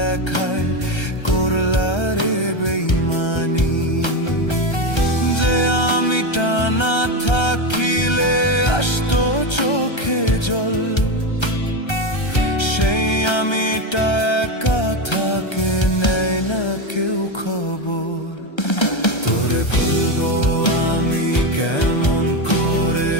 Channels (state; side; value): late; right; 1.3 ms